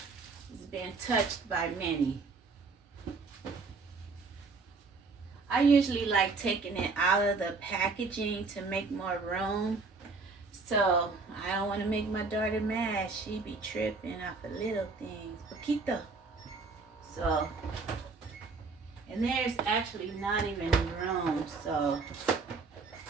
It's being touched by many. I usually like taking it out of the packaging to make more room. So I don't want to make my daughter mad. She be tripping off of little things. Poquito. So, and there's actually not even room. So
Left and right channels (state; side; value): quieter; left; 4.2 dB